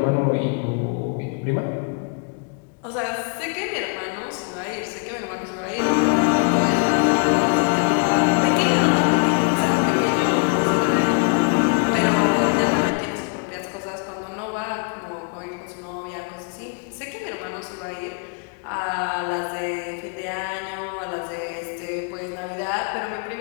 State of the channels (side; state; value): right; quieter; 37.4 dB